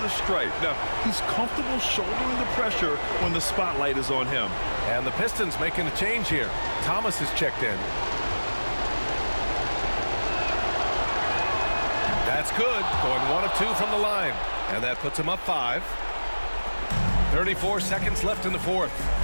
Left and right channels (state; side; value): inverted; both; correlation -1.00